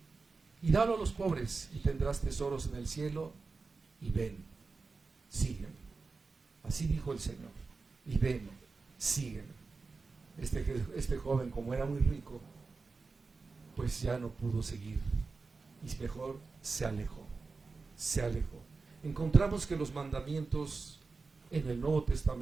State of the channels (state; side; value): quieter; left; 4.2 dB